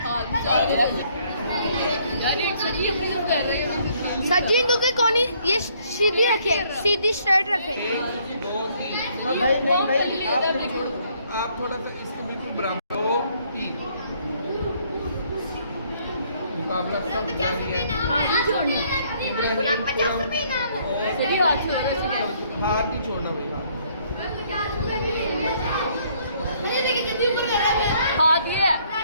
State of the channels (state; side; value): inverted; both; correlation -0.65